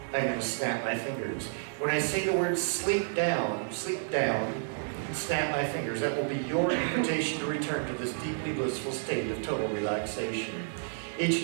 I'm going to snap my fingers. When I say the word sleep down, snap my fingers. That will be your invitation to return to this deeply blissful state of total relaxation. Each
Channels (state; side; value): silent; left; digital silence